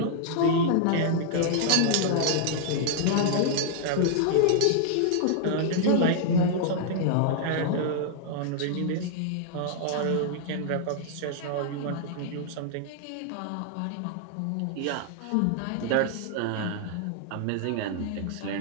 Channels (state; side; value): different; both; correlation -0.01